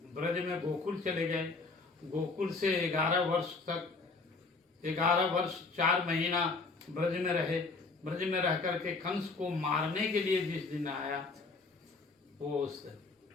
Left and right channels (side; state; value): right; quieter; 3.9 dB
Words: ब्रज में, गोकुल चले गए, गोकुल से 11 वर्ष तक, 11 वर्ष 4 महीना ब्रज में रहे। ब्रज में रह करके कंस को मारने के लिए जिस दिन आया, वो उस